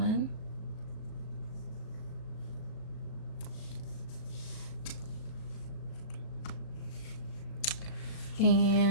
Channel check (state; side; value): late; right; 37 ms